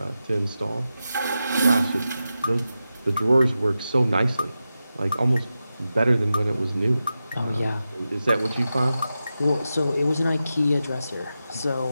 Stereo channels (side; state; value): both; inverted; correlation -0.91